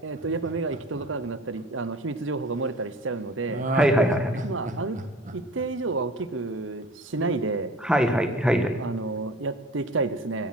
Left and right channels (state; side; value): normal; both; correlation 0.43